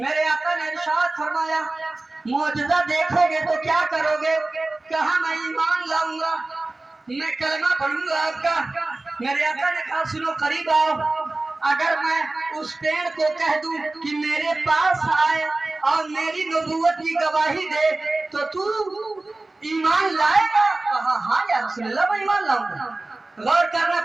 आका ने इरशाद फरमाया मौजज़ा देखोगे तो क्या करोगे? कहा मैं ईमान लाऊंगा, मैं कलमा पढ़ूंगा आपका। मेरे आका ने कहा सुनो करीब आओ, अगर मैं उस पेड़ को कह दूं कि मेरे पास आए और मेरी नबूवत की गवाही दे तो तू ईमान लाएगा? कहा हाँ या रसूल अल्लाह मैं ईमान लाऊंगा। गौर करना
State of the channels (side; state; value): left; quieter; 3.0 dB